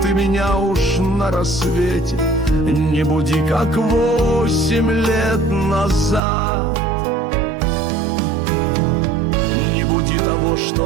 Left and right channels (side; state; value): left; drops out; at 6.2 s